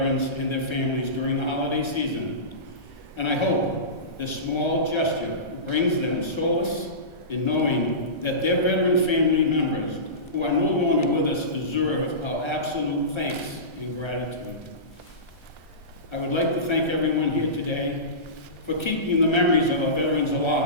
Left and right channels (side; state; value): right; late; 1.3 ms